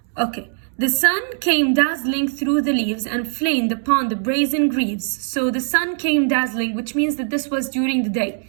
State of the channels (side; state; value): left; silent; digital silence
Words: Okay. The sun came dazzling through the leaves and flamed upon the brazen greaves. So the sun came dazzling, which means that this was during the day,